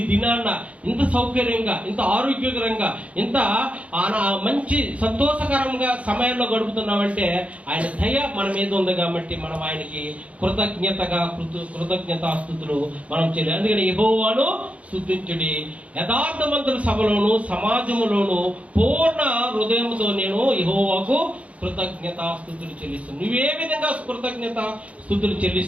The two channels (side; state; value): left; late; 0.065 ms